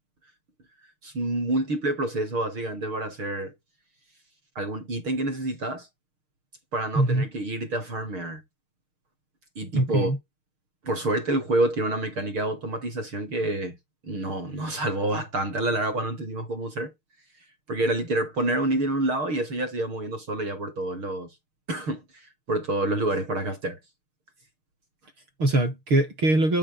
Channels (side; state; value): left; late; 6.5 ms